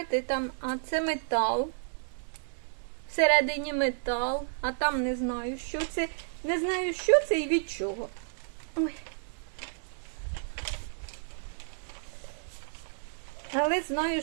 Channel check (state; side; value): silent; left; digital silence